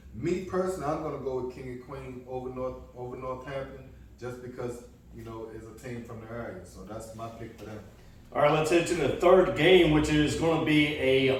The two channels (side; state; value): both; identical; correlation 1.00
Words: me personally, I'm going to go with King and Queen over Northampton just because, it's a team from the area. So that's my pick for them. All right, let's head to the third game, which is going to be